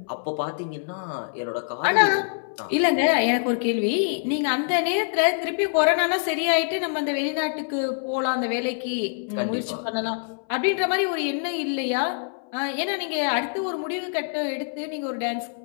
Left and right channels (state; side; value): silent; right; 62 dB below the other